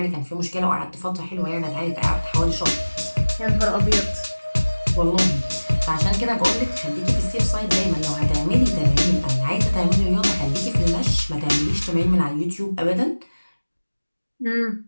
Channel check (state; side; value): inverted; both; correlation -1.00